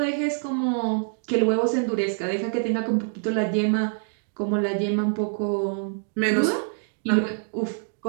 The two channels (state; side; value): silent; left; 61 dB below the other